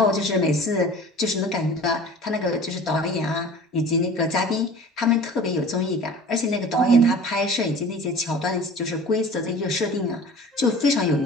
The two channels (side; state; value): both; normal; correlation 0.42